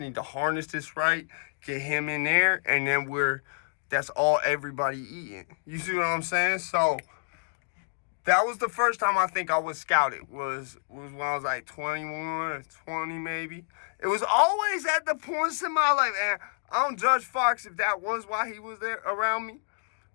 need to harness this right, get him in there, and then that's all everybody eating. You see what I'm saying? So that was the first time I think I was scouted, was when I was like 21 or 20 maybe. It was always at the points in my life, and I don't judge Fox if that was why he was there around me,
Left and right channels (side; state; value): right; silent; digital silence